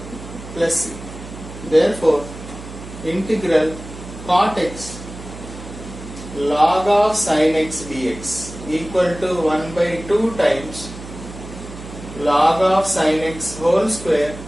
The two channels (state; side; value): noise; right; hum, 13 dB below the sound